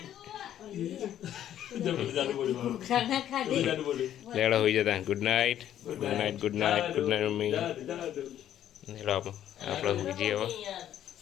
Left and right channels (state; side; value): quieter; right; 11.1 dB